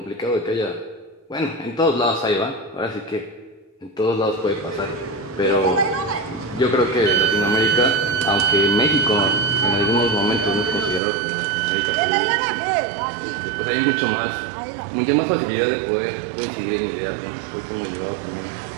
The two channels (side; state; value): left; drops out; at 11.0 s